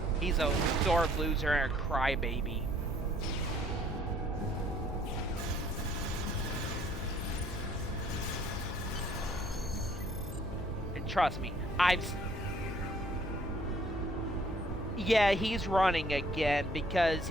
He's a sore loser and a crybaby. And trust me, yeah, he's running again because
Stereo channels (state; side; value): noise; left; hum, 9 dB below the sound